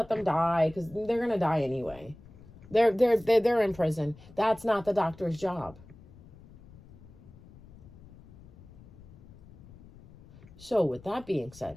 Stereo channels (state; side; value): noise; left; rumble, 21 dB below the sound